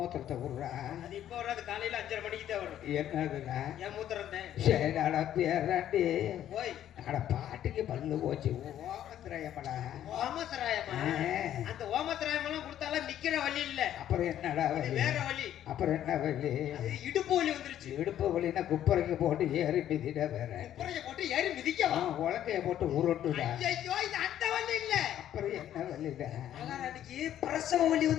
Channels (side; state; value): right; quieter; 11.3 dB